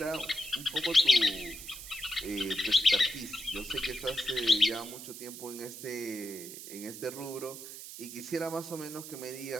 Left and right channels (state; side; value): noise; right; hiss, 11 dB below the sound